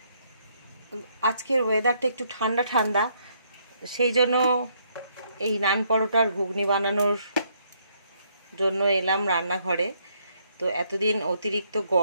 আজকের ওয়েদারটা একটু ঠান্ডা ঠান্ডা, সেই জন্য এই নান পরোটার ঘুগনি বানানোর জন্য এলাম রান্নাঘরে। তো এতদিন অতিরিক্ত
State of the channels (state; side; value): inverted; both; correlation -0.71